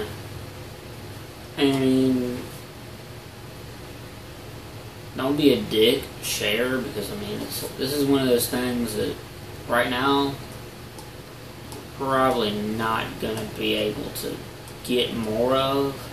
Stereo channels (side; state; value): both; identical; correlation 1.00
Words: And don't be a dick, share, because, I mean, this is one of those things that right now, probably not going to be able to get more of.